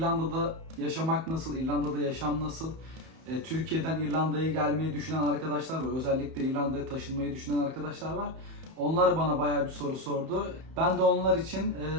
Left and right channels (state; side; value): late; left; 31 ms